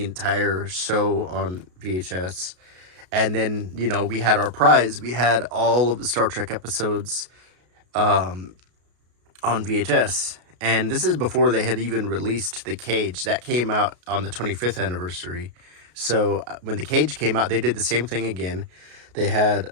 entire show on VHS. And then, we had our prize. We had all of the Star Trek episodes on VHS. And this is before they had even released The Cage. That came out on the 25th anniversary. So when The Cage came out, they did the same thing again. They had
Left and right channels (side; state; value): left; late; 33 ms